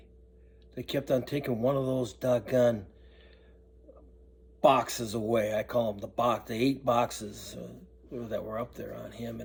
they kept on taking one of those doggone boxes away. I call them the 8 boxes that were up there on him.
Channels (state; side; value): identical; both; correlation 1.00